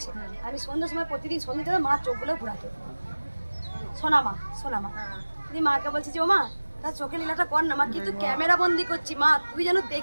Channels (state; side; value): inverted; both; correlation -1.00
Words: আমি সন্ধ্যার সময় প্রতিদিন সন্ধ্যে মা চোখগুলো ঘুরাতে, শোনা মা দিয়ে মাকে বলছি যে ও মা তার চোখে লীলাটা কর না মা, কিন্তু ক্যামেরা বন্দি করছি মা, তুই যেন